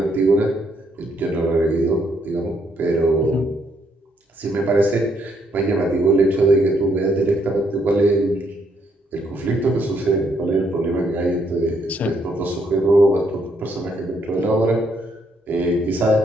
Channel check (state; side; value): normal; both; correlation 0.72